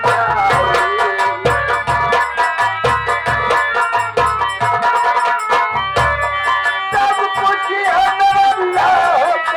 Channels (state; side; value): identical; both; correlation 1.00